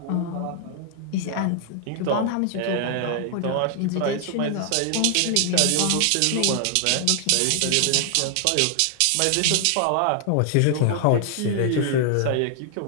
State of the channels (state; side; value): different; both; correlation 0.00